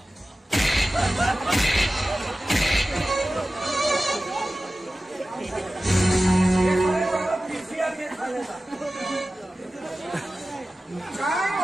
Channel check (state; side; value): normal; both; correlation 0.95